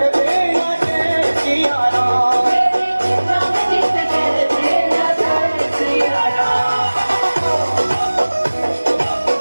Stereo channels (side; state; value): both; inverted; correlation -1.00